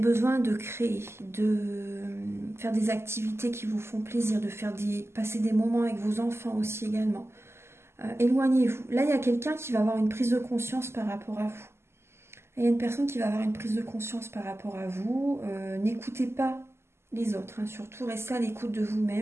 de créer, de faire des activités qui vous font plaisir, de passer des moments avec vos enfants aussi également. Éloignez-vous. Là, il y a quelqu'un qui va avoir une prise de conscience par rapport à vous. Il y a une personne qui va avoir une prise de conscience par rapport à vous. N'écoutez pas les autres, hein. Surtout, restez à l'écoute de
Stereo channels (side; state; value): left; late; 0.12 ms